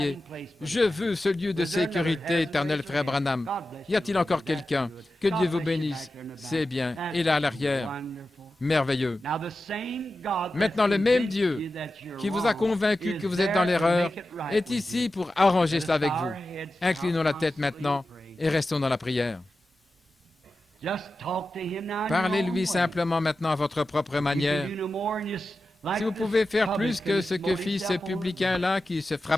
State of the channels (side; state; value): both; normal; correlation 0.93